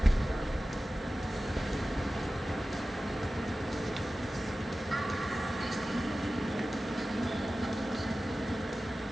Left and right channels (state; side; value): normal; both; correlation 0.96